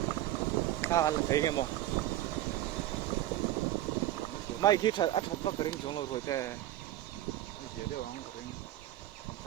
na là thấy em không mai khi thật ăn thật vất cái chúng nó rồi thế giờ đều ăn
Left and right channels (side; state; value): left; quieter; 13.9 dB